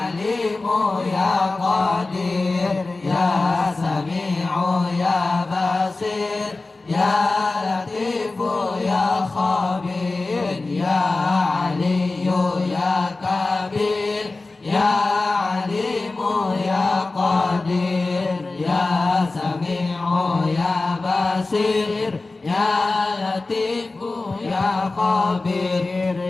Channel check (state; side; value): quieter; right; 3.4 dB